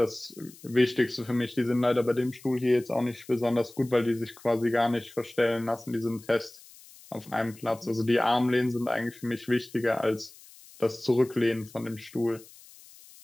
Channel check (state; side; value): noise; left; hiss, 22 dB below the sound